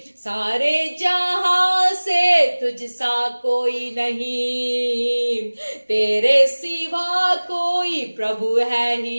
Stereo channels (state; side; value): inverted; both; correlation -1.00